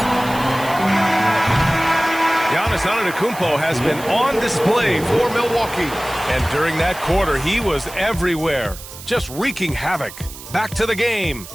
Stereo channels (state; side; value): noise; right; hiss, 15 dB below the sound